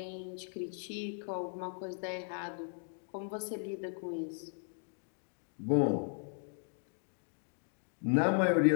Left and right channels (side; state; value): right; silent; 53 dB below the other